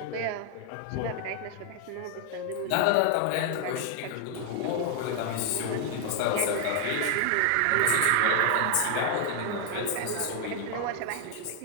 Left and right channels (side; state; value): both; different; correlation 0.00